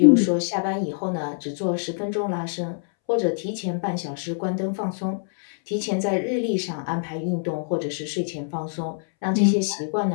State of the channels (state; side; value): silent; right; 62 dB below the other